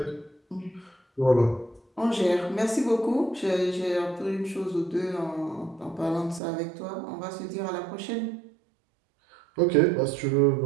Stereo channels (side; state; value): left; drops out; at 6.4 s